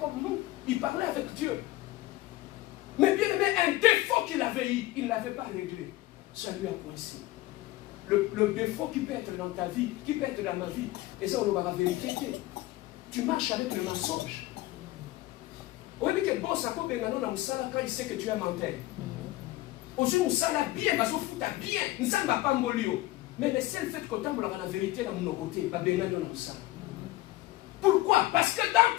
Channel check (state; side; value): quieter; right; 17.6 dB